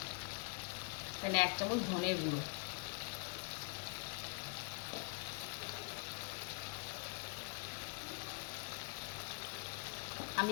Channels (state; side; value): quieter; right; 33.4 dB